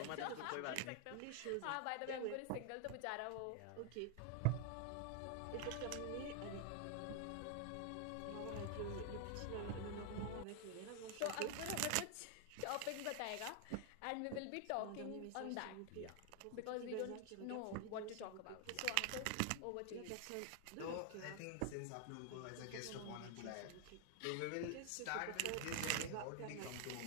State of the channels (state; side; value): different; both; correlation 0.00